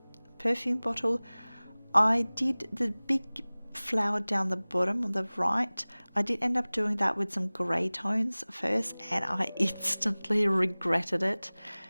perfume bottle. I did the big flower down the bottom on the right. I did end up doing that with some grey tones first, and I instantly regretted it.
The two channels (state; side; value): inverted; both; correlation -1.00